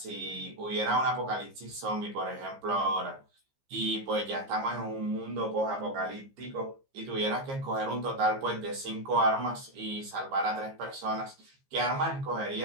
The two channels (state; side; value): late; left; 15 ms